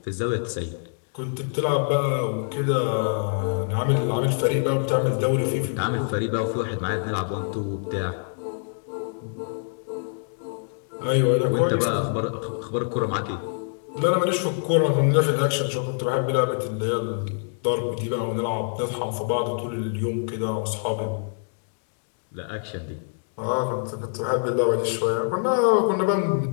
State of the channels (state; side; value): silent; right; digital silence